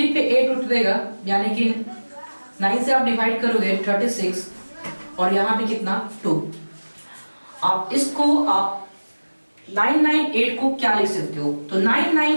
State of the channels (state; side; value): inverted; both; correlation -1.00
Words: पे 8 उठ देगा, यानी कि 9 से आप डिवाइड करोगे 36 और यहाँ पे कितना 2। आप इसको आप 998 को क्या लिख सकते हो, तो